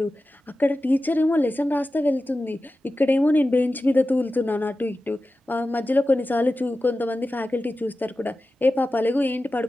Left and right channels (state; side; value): normal; both; correlation 0.94